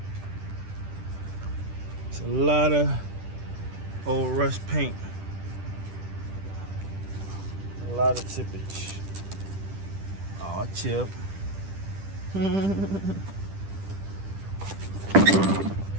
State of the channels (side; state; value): left; late; 10 ms